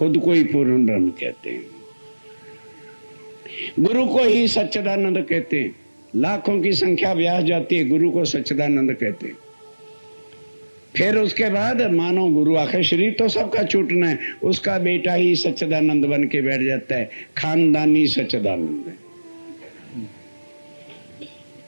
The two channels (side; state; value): both; inverted; correlation -1.00